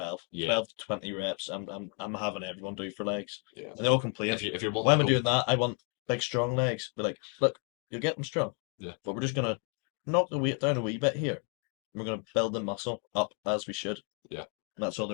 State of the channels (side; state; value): right; quieter; 39.7 dB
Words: Yeah. 12 to 20 reps. I'm having everyone do for legs, Yeah. and they all complain. If you're wanting Why am to I go- doing that? I want big, strong legs. Be like, look, you'll get them strong. Yeah. But we're just gonna knock the weight down a wee bit here. We're gonna build the muscle up as we should. Yeah. That's all